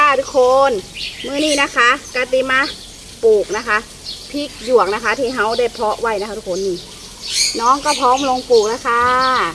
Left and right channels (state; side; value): identical; both; correlation 1.00